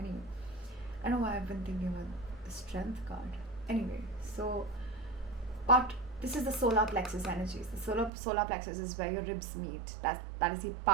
I know why I've been thinking about the strength card. Anyway, so, but this is the solar plexus energies. The solar plexus is where your ribs meet. That is the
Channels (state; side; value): drops out; left; at 8.1 s